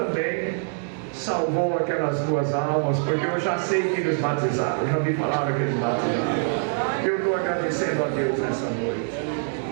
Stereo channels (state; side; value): silent; left; digital silence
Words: salvou aquelas duas almas, porque eu já sei que eles batizaram, eu já me falaram que eles batizaram. Eu estou agradecendo a Deus nessa noite.